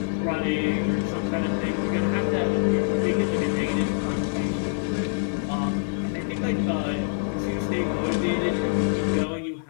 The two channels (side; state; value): right; silent; 61 dB below the other